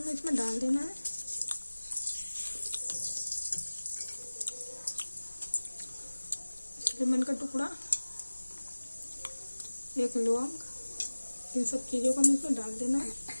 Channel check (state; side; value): inverted; both; correlation -1.00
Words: इसमें डाल देना है। लेमन का टुकड़ा, 1 लौंग, इन सब चीज़ों को हमें इसमें डाल देना है।